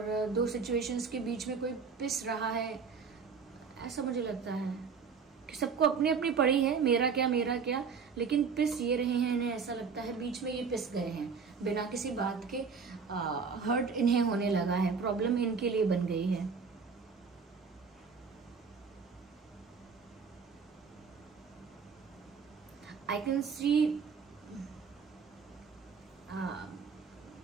दो सिचुएशंस के बीच में कोई पिस रहा है, ऐसा मुझे लगता है कि सबको अपनी अपनी पड़ी है, मेरा क्या, लेकिन पिस ये रहे हैं। इन्हें ऐसा लगता है बीच में ये पिस गए हैं बिना किसी बात के। हर्ट इन्हें होने लगा है, प्रॉब्लम इनके लिए बन गई है। आई कैन सी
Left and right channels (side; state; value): left; quieter; 5.6 dB